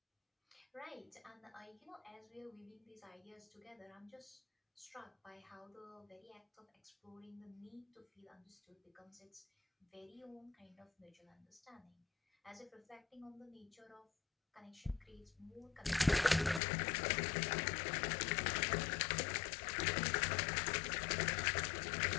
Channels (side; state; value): right; drops out; at 16.6 s